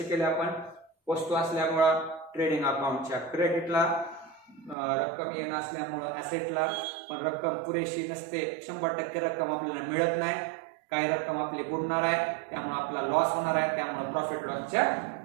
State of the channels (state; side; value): drops out; left; at 4.8 s